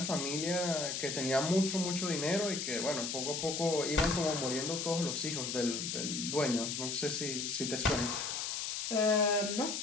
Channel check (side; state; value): left; noise; hiss, 3 dB below the sound